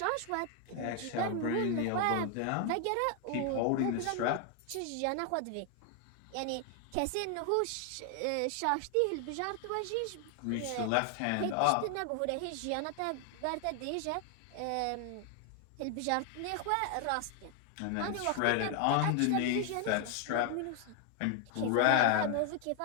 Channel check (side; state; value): both; different; correlation 0.00